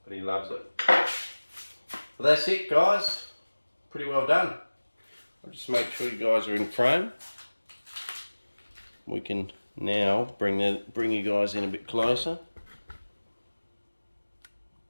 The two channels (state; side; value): inverted; both; correlation -1.00